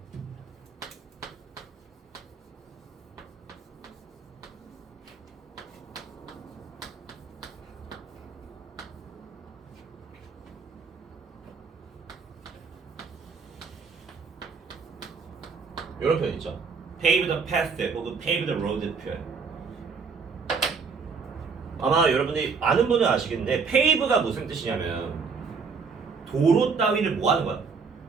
이런 표현 있죠. pave the path 혹은 pave the road 표현. 아마 여러분들이 아는 분은 아시겠는데 pave가 무슨 뜻이냐면 도로 따위를 뭐 하는 거야?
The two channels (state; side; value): quieter; left; 5.2 dB